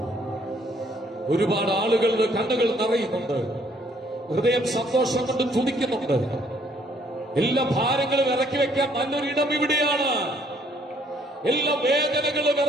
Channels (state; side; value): normal; both; correlation 0.65